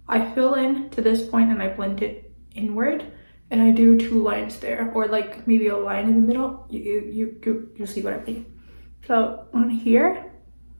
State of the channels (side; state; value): both; inverted; correlation -1.00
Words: I fill in to this point and I blend it inward, and I do 2 lines there, or like maybe a line in the middle. You see what I mean. So on here,